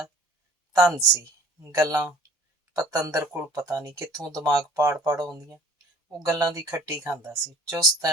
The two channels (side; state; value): both; normal; correlation 0.51